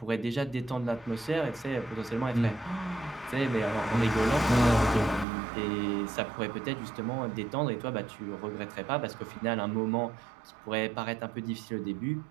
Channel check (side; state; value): left; drops out; at 5.2 s